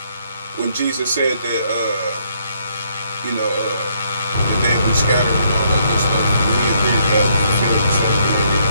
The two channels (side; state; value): both; inverted; correlation -0.71